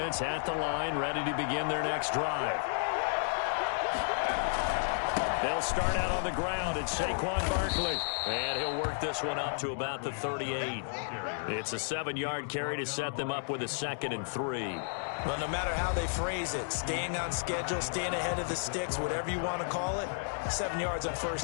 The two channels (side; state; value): right; silent; digital silence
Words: at the line, ready to begin their next drive. They'll start out on the ground. It's Saquon Barkley. And he'll work this one up to about the 38. It's a 7-yard carry to set them up with a 2nd and 3. Well, no matter how they phrase it, staying on schedule, staying ahead of the sticks, whatever you want to call it, 7 yards on